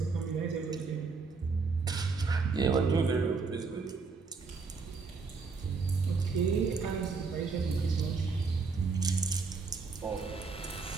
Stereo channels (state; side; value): quieter; left; 4.7 dB